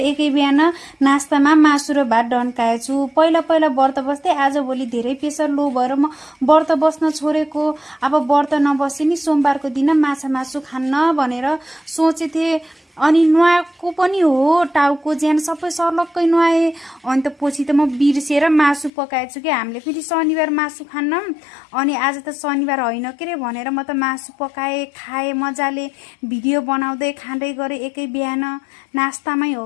एकै बिहान नास्तामा मासु र भात डन्काएछु। पहिला पहिला व्रत बस्दै आजभोलि धेरै प्रेसर लो भएर म व्रत बस्न छोडेको। अब व्रत नबसे नि सोमबारको दिन माछा मासु खान्न भनेर सोचेथे। अनि नुहाएको पनि हो, टाउको ज्यान सबै सर्लक्कै नुहाएँ। अनि त पछि त म बिर्सेर मासु पकाएछु कि हामीले फेरि शनिबार मासु खान्न। अनि आज त शनिबार होइन के रे भनेर म त मासु पकाएँ, खाएँ मजाले, भिडियो बनाउँदै खाँदै गरेँ एकै बिहान। नास्तामै हो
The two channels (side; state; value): right; drops out; at 18.9 s